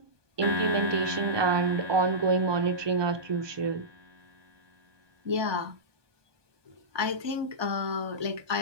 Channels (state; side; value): late; left; 1.2 ms